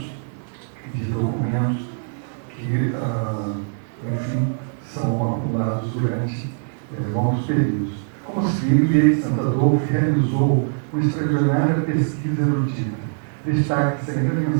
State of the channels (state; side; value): silent; left; digital silence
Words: de documentos que, enfim, são acumulados durante longos períodos. Como se vê, Millet de Santo Adolfo realizou uma extraordinária pesquisa erudita. Destaca-se ainda a